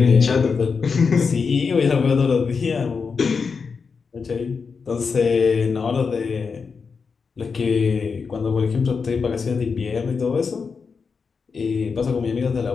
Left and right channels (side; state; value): right; quieter; 5.3 dB